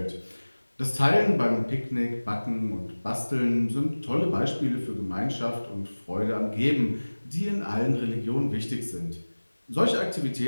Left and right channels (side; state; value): both; inverted; correlation -1.00